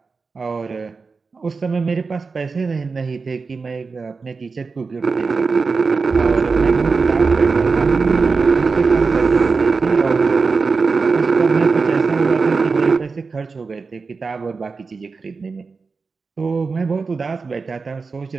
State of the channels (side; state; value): left; quieter; 4.5 dB